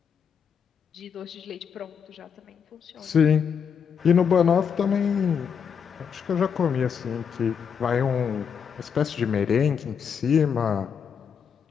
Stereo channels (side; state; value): right; quieter; 7.0 dB